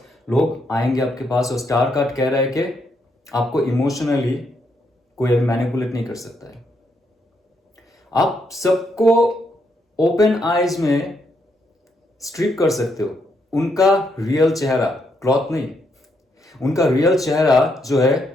लोग आएंगे आपके पास। और स्टार कार्ड कह रहा है कि आपको इमोशनली कोई अभी मैनिपुलेट नहीं कर सकता है। आप सबको ओपन आइज में स्ट्रिप कर सकते हो, उनका रियल चेहरा, क्लॉथ नहीं, उनका रियल चेहरा जो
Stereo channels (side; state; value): both; normal; correlation 0.77